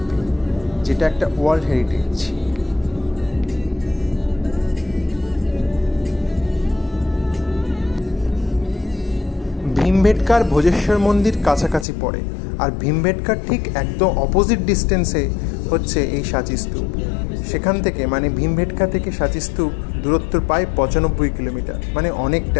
যেটা একটা ওয়ার্ল্ড হেরিটেজ। ভীমবেটকার ভোজেশ্বর মন্দির কাছাকাছি পড়ে, আর ভীমবেটকার ঠিক একদম অপোজিট ডিস্টেন্সে হচ্ছে এই সাঁচি স্তূপ। সেখান থেকে মানে ভীমবেটকা থেকে সাঁচি স্তূপ দূরত্ব প্রায় 95 কিলোমিটার, মানে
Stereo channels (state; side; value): drops out; right; at 11.9 s